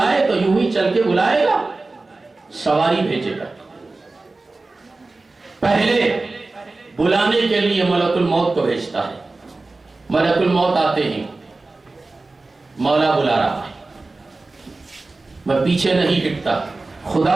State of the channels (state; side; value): quieter; left; 3.4 dB